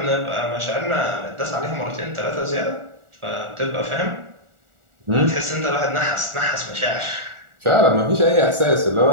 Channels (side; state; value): left; late; 1.4 ms